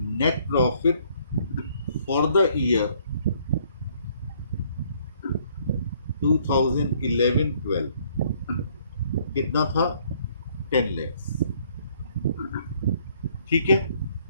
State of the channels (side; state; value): both; inverted; correlation -0.63